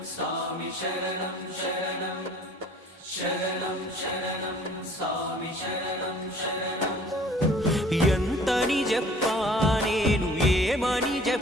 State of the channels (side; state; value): both; normal; correlation 0.52